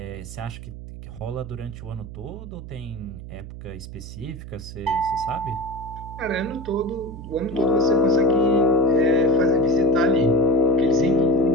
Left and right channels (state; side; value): noise; right; hum, 12 dB below the sound